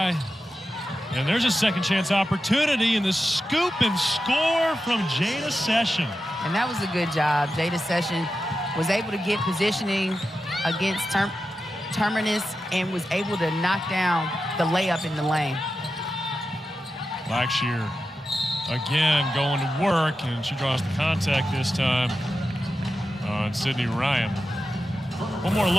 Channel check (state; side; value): normal; both; correlation 0.91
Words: And there's a second chance opportunity in the scoop and score from Jada Session. And that was a good job. Jada Session was able to get positioning against Terminus and was able to knock down the layup in the lane. Blackshear again going to work, and she draws the contact this time on Sydney Ryan. One more